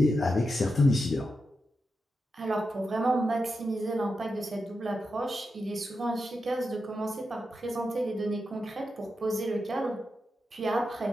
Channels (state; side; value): normal; both; correlation 0.88